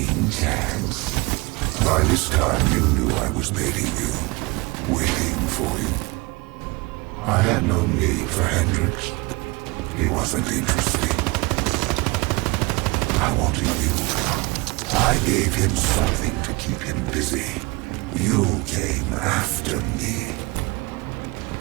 chance. By this time, you knew I was baiting you, waiting for you. I had no need for Hendricks. He wasn't interesting. I wanted you. I gave him something to keep him busy. You came after me.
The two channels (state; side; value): quieter; left; 24.8 dB